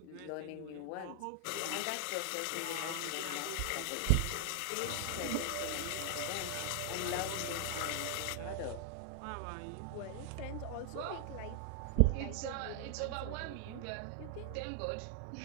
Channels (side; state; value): both; different; correlation 0.00